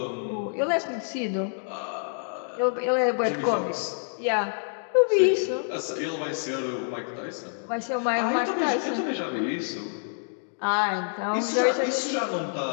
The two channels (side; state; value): right; silent; digital silence